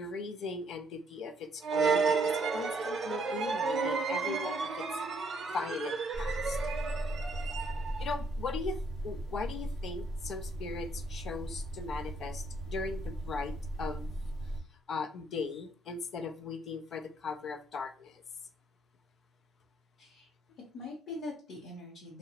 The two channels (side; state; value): both; normal; correlation 0.70